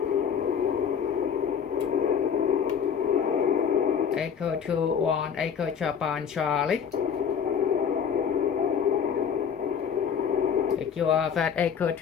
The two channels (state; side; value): quieter; right; 7.4 dB